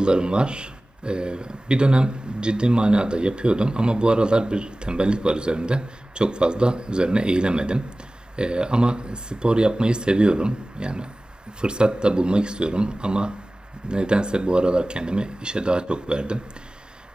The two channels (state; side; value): normal; both; correlation 0.98